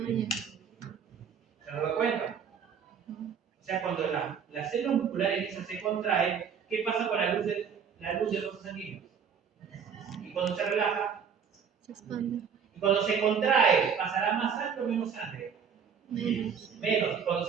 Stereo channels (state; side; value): quieter; left; 7.0 dB